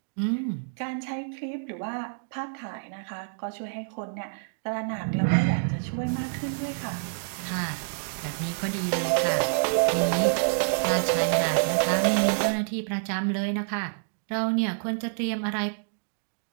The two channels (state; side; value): silent; left; digital silence